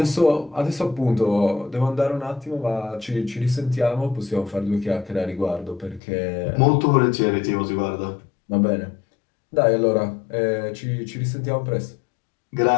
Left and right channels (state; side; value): drops out; right; at 6.0 s